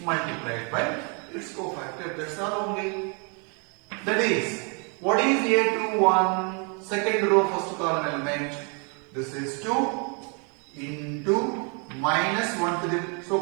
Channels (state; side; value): quieter; left; 35.7 dB